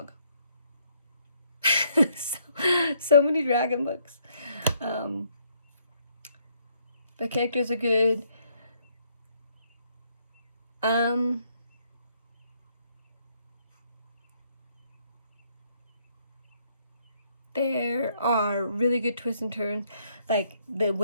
so many dragon books. The characters are good. There are really good twists and turns. Like, the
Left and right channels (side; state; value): both; inverted; correlation -0.70